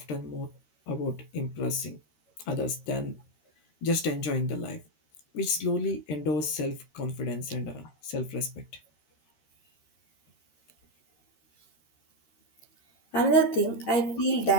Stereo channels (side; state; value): right; late; 13 ms